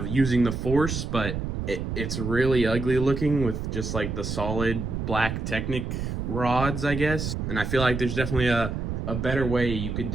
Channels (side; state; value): right; noise; rumble, 3 dB below the sound